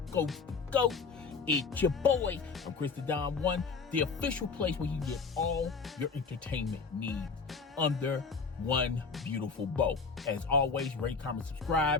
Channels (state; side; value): quieter; right; 4.9 dB